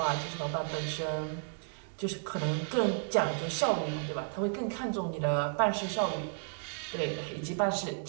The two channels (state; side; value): silent; left; 56 dB below the other